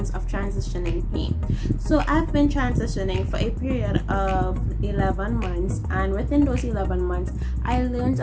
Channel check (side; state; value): both; identical; correlation 1.00